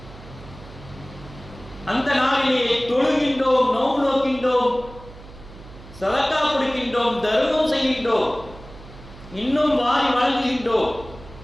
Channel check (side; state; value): right; noise; hum, 18 dB below the sound